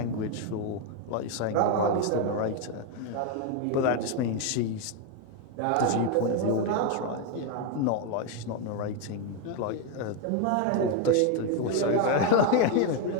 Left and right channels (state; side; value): different; both; correlation 0.01